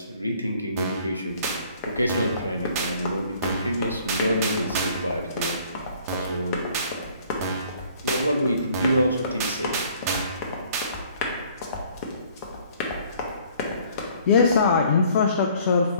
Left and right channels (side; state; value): both; inverted; correlation -0.57